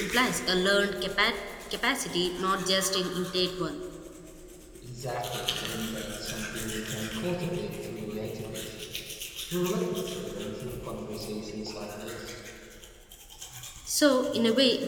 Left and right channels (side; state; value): both; identical; correlation 1.00